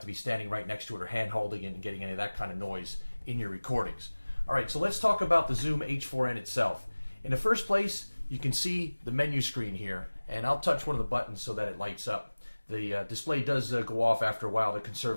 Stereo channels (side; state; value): both; inverted; correlation -1.00